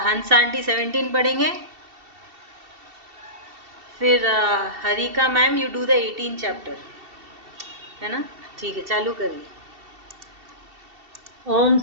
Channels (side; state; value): left; late; 2.7 ms